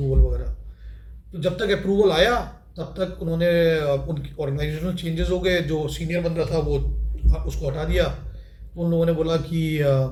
वगैरह। तो जब तक अप्रूवल आया तब तक उन्होंने उनकी ऑर्गेनाइजेशनल चेंजेस हो गए, जो सीनियर बंदा था वो उसको हटा दिया। तो उन लोगों ने बोला कि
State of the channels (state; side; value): identical; both; correlation 1.00